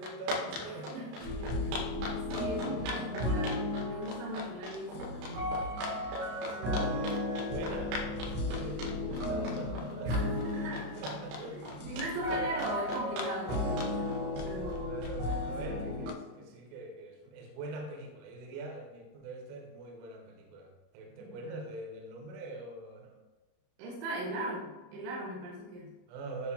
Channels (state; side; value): late; left; 33 ms